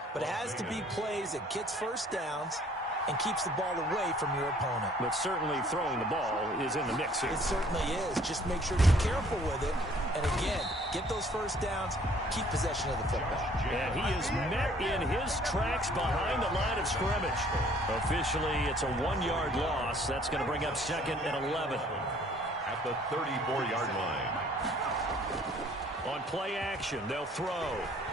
but it has to be plays that gets first downs and keeps the ball away from your opponent. But certainly throwing the ball is in the mix here. It certainly is. Just make sure you're careful with it. And again, get those first downs, keep possession of the football. And he is met in his tracks behind the line of scrimmage. Officially, it's a 1-yard loss. That's going to bring up 2nd and 11. At the 34-yard line. On play action, they'll throw.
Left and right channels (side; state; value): both; normal; correlation 0.58